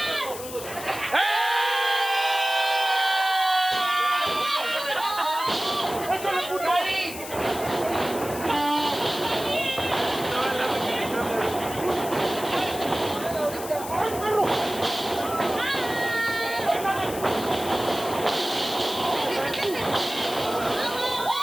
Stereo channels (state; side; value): noise; left; hiss, 11 dB below the sound